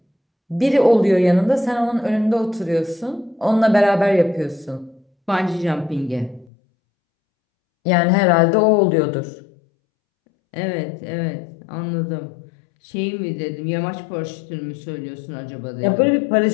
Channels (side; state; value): right; drops out; at 6.5 s